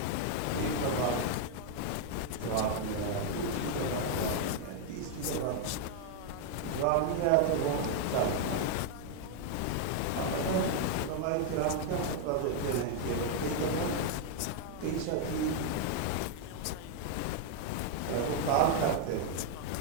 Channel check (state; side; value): different; both; correlation 0.00